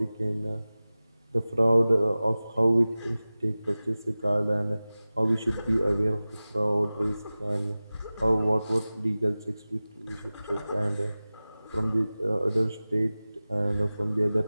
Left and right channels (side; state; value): both; inverted; correlation -0.97